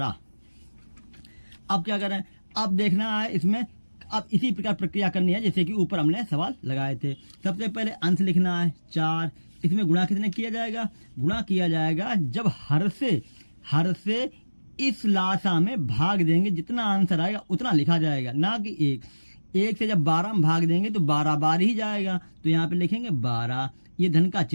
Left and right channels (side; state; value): both; inverted; correlation -1.00